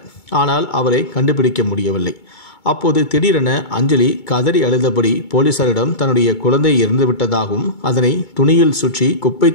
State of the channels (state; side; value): late; right; 2.2 ms